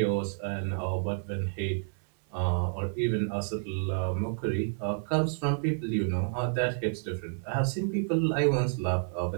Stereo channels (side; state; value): left; silent; digital silence